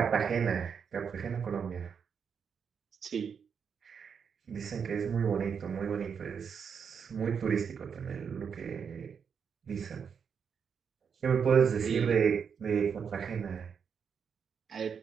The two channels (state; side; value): quieter; left; 6.7 dB